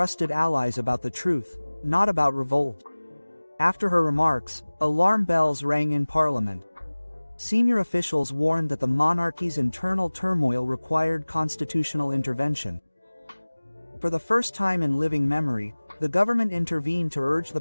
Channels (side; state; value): both; inverted; correlation -1.00